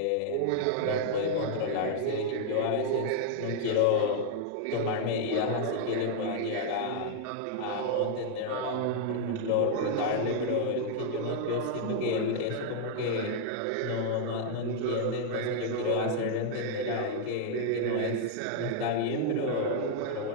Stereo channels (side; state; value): both; different; correlation -0.01